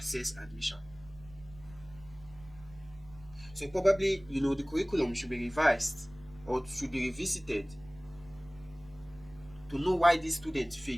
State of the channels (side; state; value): right; noise; rumble, 21 dB below the sound